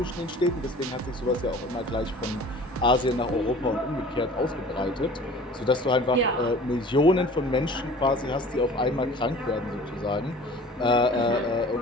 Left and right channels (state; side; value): normal; both; correlation 0.45